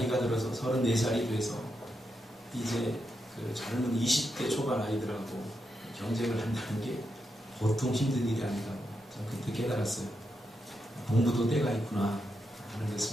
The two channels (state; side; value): normal; both; correlation 0.84